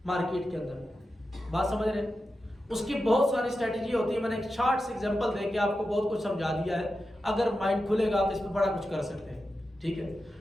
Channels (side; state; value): both; normal; correlation 0.91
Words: مارکیٹ کے اندر. بات سمجھ رہے ہیں؟ اس کی بہت ساری اسٹریٹجی ہوتی ہے. میں نے ایک شارٹ سے ایگزامپل دے کے آپ کو بہت کچھ سمجھا دیا ہے. اگر مائنڈ کھلے گا تو اس پہ بڑا کچھ کر سکتے ہیں. ٹھیک ہے،